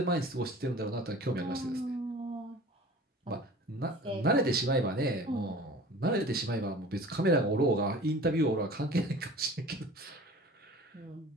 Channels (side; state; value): both; normal; correlation 0.42